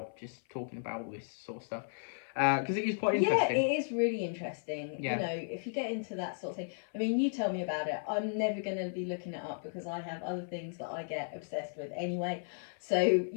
just talking about all this sort of stuff. Because it is quite interesting. Yeah, it is really interesting. Yeah. You know, if you get into that sort of thing, I mean, you tell me about it. I'm never going to be looking it up because I have other things that I get obsessed with anyway. So,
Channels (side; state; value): right; silent; 55 dB below the other